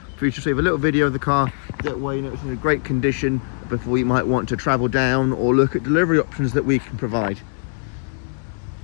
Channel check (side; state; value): right; silent; 65 dB below the other